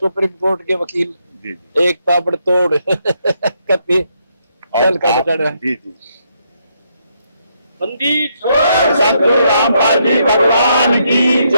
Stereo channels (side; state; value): both; inverted; correlation -0.76